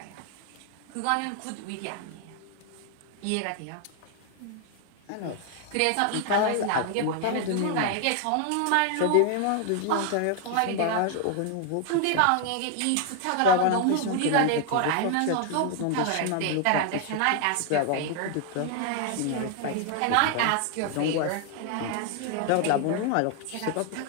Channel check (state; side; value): different; both; correlation 0.00